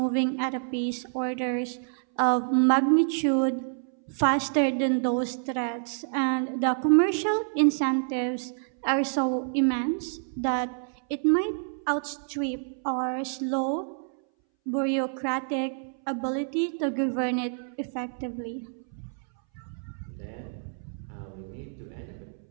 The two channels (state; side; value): silent; left; 59 dB below the other